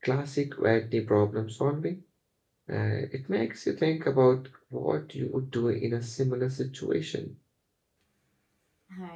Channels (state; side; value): identical; both; correlation 1.00